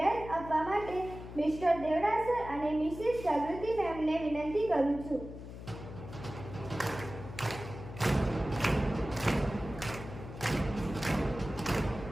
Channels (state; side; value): noise; left; hum, 12 dB below the sound